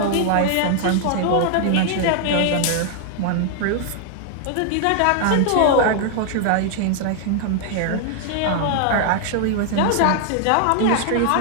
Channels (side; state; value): both; different; correlation 0.00